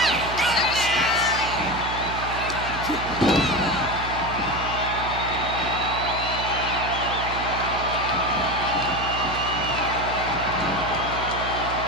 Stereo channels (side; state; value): right; noise; hum, 9 dB below the sound